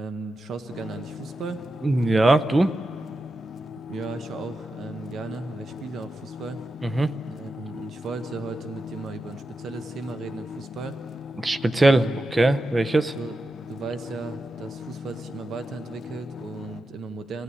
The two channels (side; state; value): both; normal; correlation 0.89